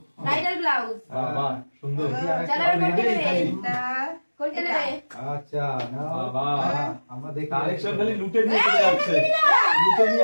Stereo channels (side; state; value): both; inverted; correlation -1.00